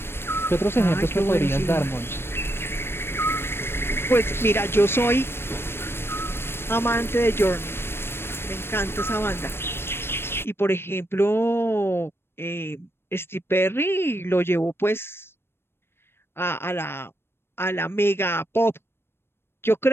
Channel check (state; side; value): late; right; 0.12 ms